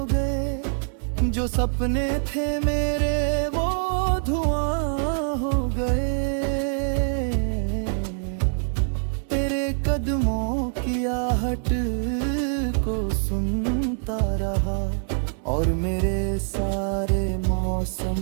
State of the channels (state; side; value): silent; left; 61 dB below the other